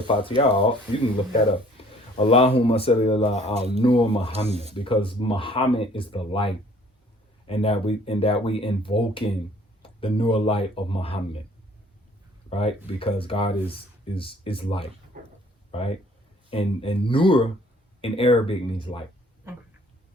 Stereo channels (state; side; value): normal; both; correlation 0.56